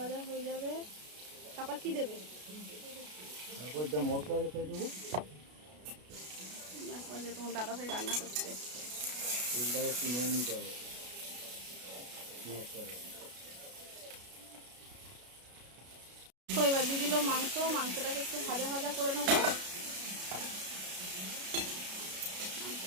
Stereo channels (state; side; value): late; left; 33 ms